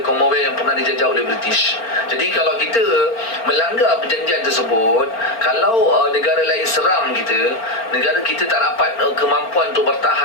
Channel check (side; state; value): right; late; 4.4 ms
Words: Commonwealth yang pernah dijajah oleh British. Jadi kalau kita melanggar perjanjian tersebut, kalau negara lain serang kita, negara kita tak dapat kemampuan untuk